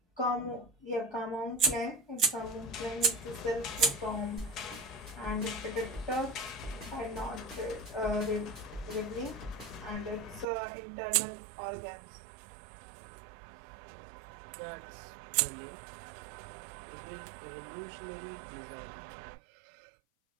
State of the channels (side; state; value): left; drops out; at 10.5 s